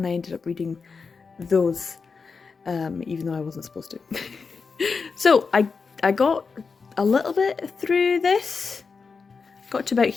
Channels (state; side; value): quieter; right; 5.0 dB